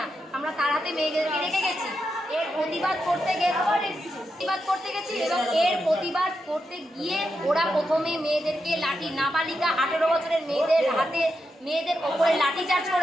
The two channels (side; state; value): both; normal; correlation 0.86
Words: আমরা তাড়াতে মেয়েদেরকে রেখে গেছি। এর প্রতিবাদ করতে গেছি এবং এর প্রতিবাদ করতে গিয়ে ওরা প্রথমে মেয়েদেরকে লাঠি, নাবালিকা 18 বছরের মেয়েদের হাতে, মেয়েদের ওপরে লাঠি চার্জ